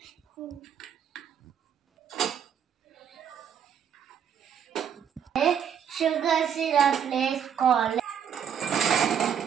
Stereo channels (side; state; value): left; quieter; 8.2 dB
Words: షుగర్ సిరప్ వేసుకోవాలి.